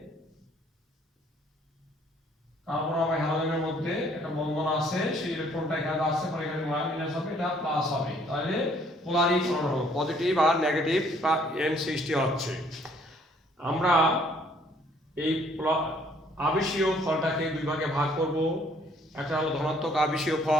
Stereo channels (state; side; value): normal; both; correlation 0.62